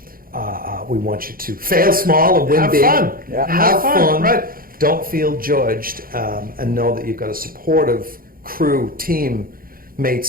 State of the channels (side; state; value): left; late; 0.42 ms